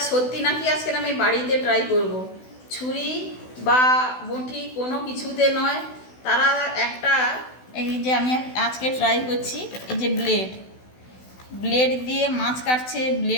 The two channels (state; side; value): late; right; 16 ms